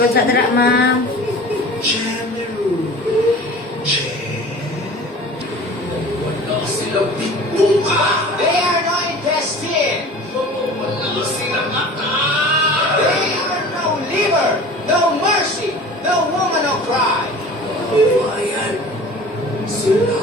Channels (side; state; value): both; normal; correlation 0.41